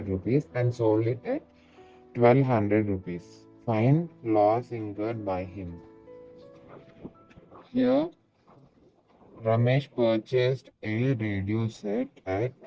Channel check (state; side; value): identical; both; correlation 1.00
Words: rupees and sold it at 1200 rupees. Find loss incurred by him. Here, Ramesh purchased a radio set at